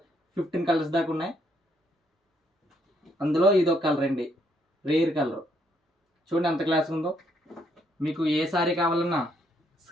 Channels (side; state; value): both; normal; correlation 0.72